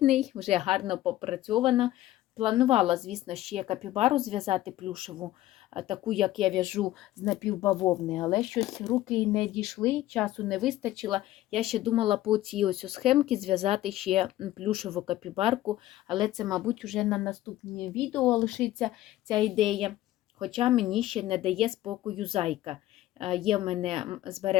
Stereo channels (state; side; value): quieter; right; 15.0 dB